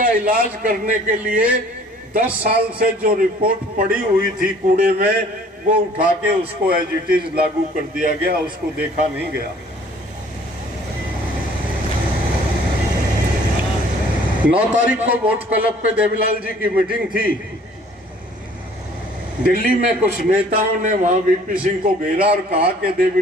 इलाज करने के लिए 10 साल से जो रिपोर्ट पड़ी हुई थी कूड़े में, वो उठा के उसको एज इट इज लागू कर दिया गया, उसको देखा नहीं गया। 9 तारीख को वोट क्लब पे देवीलाल जी की मीटिंग थी। दिल्ली में कुछ नेताओं ने वहां वीपी सिंह को घेरा और कहा कि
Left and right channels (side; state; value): both; normal; correlation 0.54